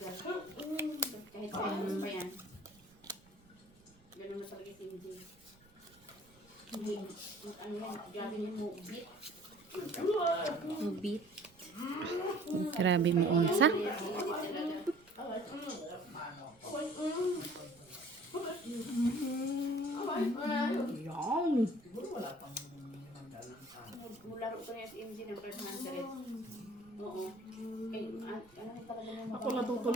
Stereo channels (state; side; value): noise; right; rumble, 28 dB below the sound